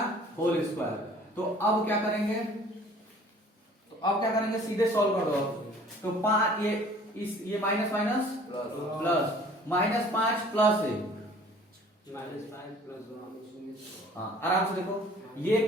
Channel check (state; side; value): normal; both; correlation 0.51